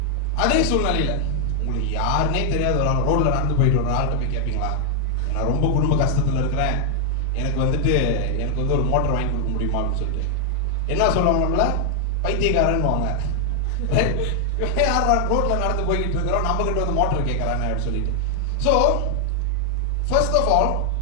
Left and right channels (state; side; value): different; both; correlation 0.00